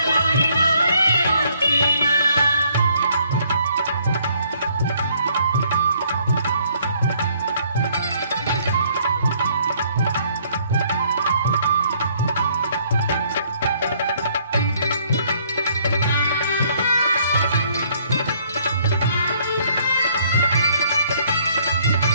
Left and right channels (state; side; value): inverted; both; correlation -0.64